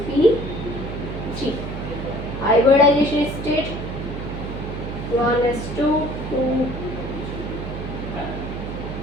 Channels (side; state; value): right; noise; hum, 7 dB below the sound